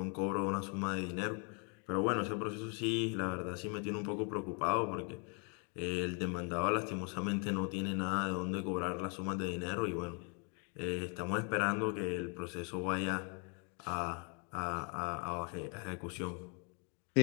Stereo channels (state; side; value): quieter; right; 37.6 dB